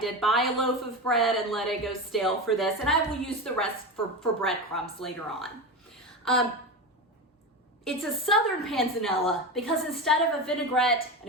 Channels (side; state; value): both; normal; correlation 0.22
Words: buy a loaf of bread and let it go stale for this, and I will use the rest for breadcrumbs later on. It's a Southern Panzanella because instead of a vinaigrette